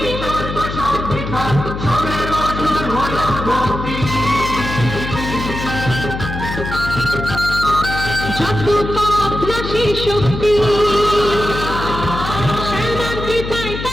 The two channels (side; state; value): left; noise; hum, 6 dB below the sound